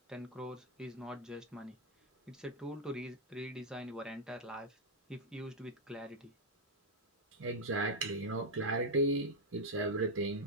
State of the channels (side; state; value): both; normal; correlation 0.00